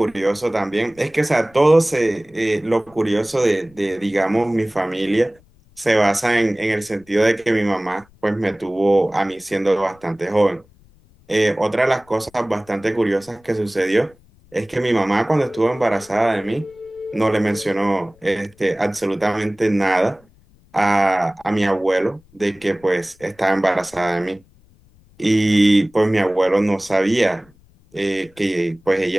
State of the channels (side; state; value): left; noise; rumble, 30 dB below the sound